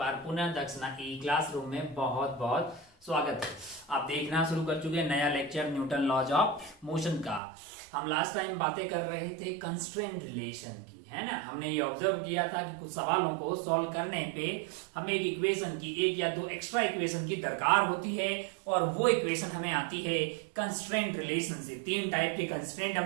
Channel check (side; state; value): left; drops out; at 7.4 s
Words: पुनः दक्षिणा ई क्लासरूम में बहुत बहुत स्वागत है। आप देखना शुरू कर चुके हैं नया lecture Newton laws of motion का। हम लास्ट टाइम बातें कर रहे थे कंस्ट्रेंट रिलेशन की, है ना। हमने ये ऑब्जर्व किया था कि कुछ सवालों को सॉल्व करने पे हमें एक इक्वेशन की, एक या दो एक्स्ट्रा इक्वेशन की दरकार होती है और वो इक्वेशन हमें आती है कंस्ट्रेंट रिलेशन से। तीन टाइप के कंस्ट्रेंट